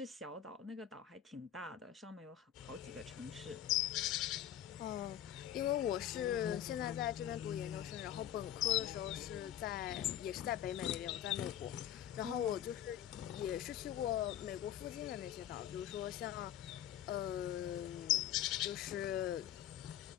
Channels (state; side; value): quieter; right; 11.3 dB